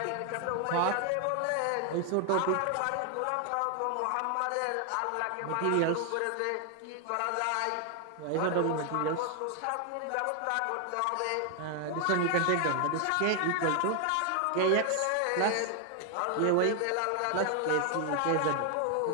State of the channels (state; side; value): different; both; correlation 0.00